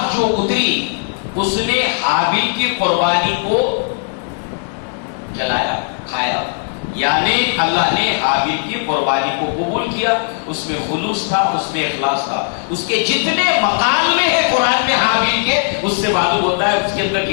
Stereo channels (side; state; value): right; silent; digital silence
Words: جو اتری اس نے حابل کی قربانی کو جلایا، کھایا. یعنی اللہ نے حابل کی قربانی کو قبول کیا. اس میں خلوص تھا، اس میں اخلاص تھا. اس کے جتنے مقالے ہیں قرآن میں حابل کے، اس سے معلوم ہوتا ہے اس کے اندر